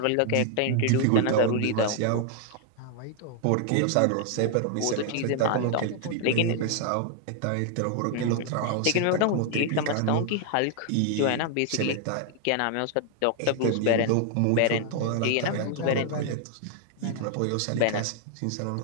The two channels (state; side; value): different; both; correlation 0.00